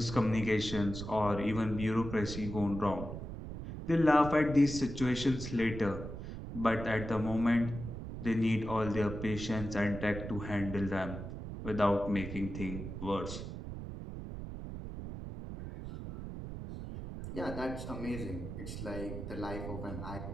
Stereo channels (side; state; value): right; noise; rumble, 8 dB below the sound